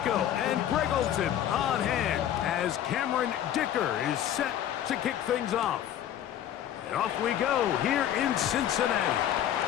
and Greg Olson on hand as Cameron Dicker is set to kick things off. And off we go here in Cincinnati.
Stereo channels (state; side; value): quieter; right; 10.9 dB